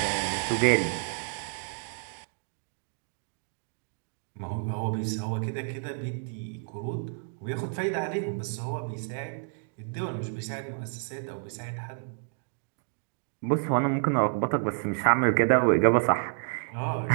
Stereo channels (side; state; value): left; silent; digital silence